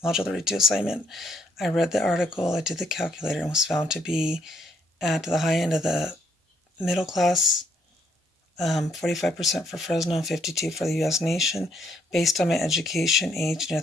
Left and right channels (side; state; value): both; normal; correlation 0.70